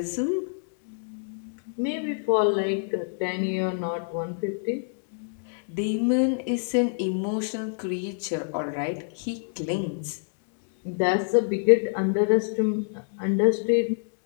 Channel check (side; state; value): right; silent; digital silence